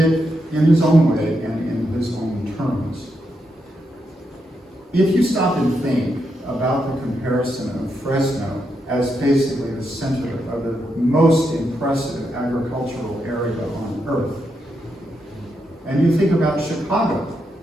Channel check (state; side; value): normal; both; correlation 0.83